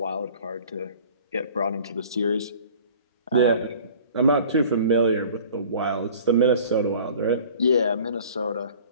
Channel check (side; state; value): both; inverted; correlation -0.47